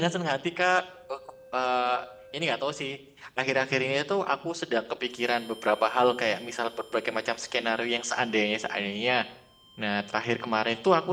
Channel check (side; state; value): both; identical; correlation 1.00